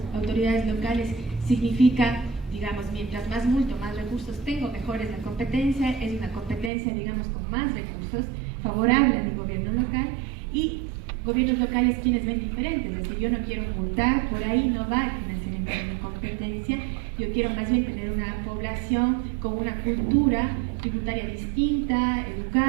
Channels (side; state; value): left; drops out; at 6.7 s